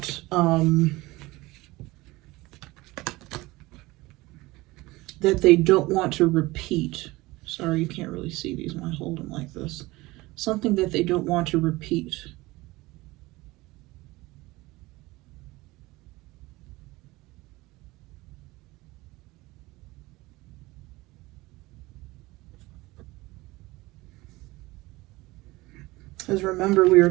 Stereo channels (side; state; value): left; quieter; 20.6 dB